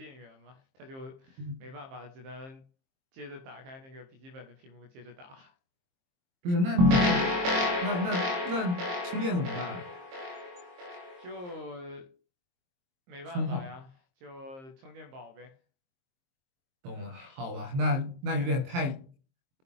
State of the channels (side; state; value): left; late; 23 ms